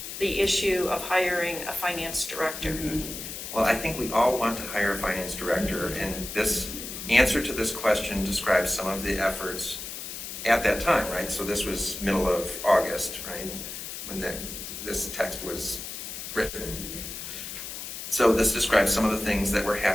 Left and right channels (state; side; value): noise; left; hiss, 8 dB below the sound